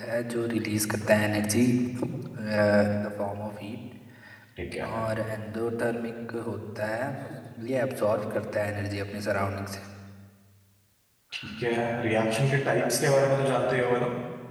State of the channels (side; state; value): both; identical; correlation 1.00